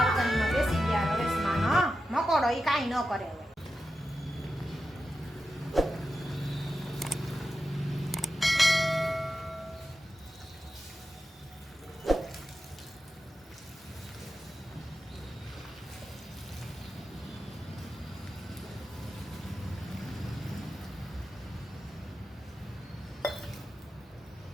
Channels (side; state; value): both; normal; correlation 0.91